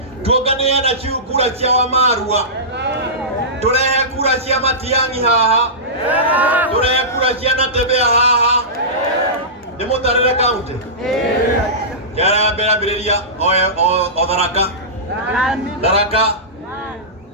tuonganĩre na kura cia Wamarua tũrehe kura cia Matiang'i haha tũrehe kura cia Natembeya haha nĩ mũtarĩre kaunti mbĩrĩria o Tharaka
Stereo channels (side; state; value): both; normal; correlation -0.19